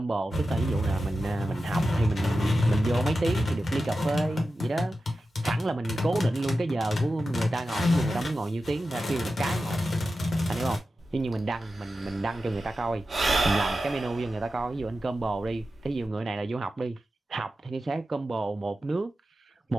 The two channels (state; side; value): normal; both; correlation 0.92